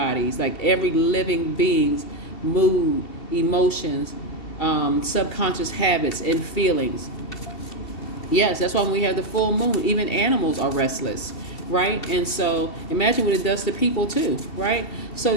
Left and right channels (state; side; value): late; right; 2.7 ms